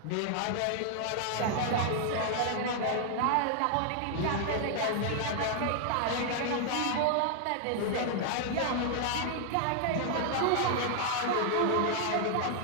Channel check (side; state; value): both; different; correlation 0.00